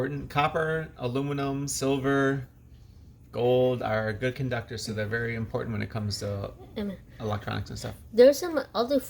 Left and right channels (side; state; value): both; identical; correlation 1.00